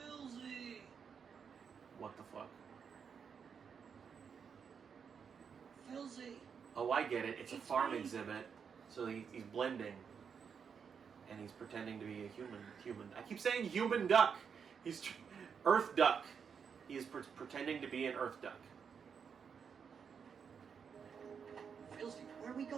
What the fuck? Filzy. Oh, I get it. It's a farm exhibit, so he's blending, and he's pretending to be a human. I keep saying human duck. He's Earth duck. He is pretending to be an Earth duck. Filzy, where are we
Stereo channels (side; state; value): left; quieter; 6.6 dB